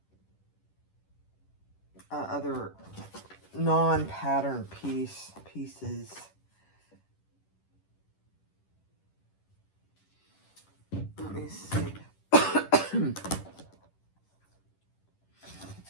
other non-pattern pieces. Let me see.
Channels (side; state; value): right; late; 10 ms